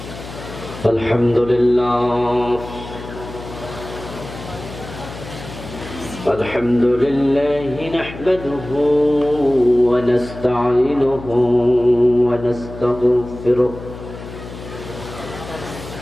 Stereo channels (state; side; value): noise; left; hum, 13 dB below the sound